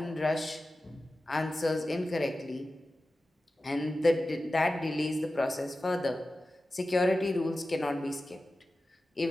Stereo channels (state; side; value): normal; both; correlation 0.94